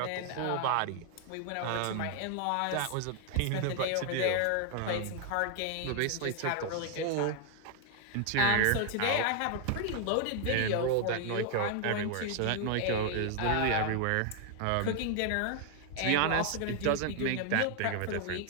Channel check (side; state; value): both; different; correlation 0.00